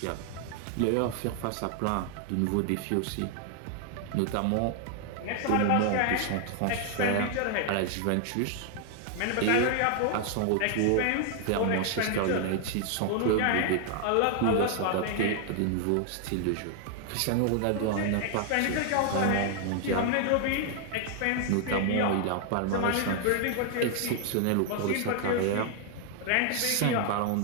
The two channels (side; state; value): both; different; correlation 0.00